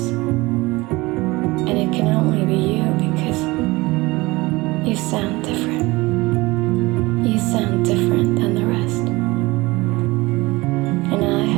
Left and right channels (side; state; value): left; quieter; 21.8 dB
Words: And it can only be you because you sound different. You sound different than the rest. And I